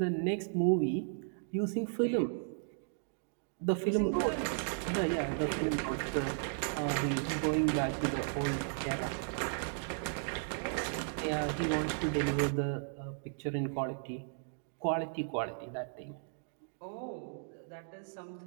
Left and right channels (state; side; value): silent; left; digital silence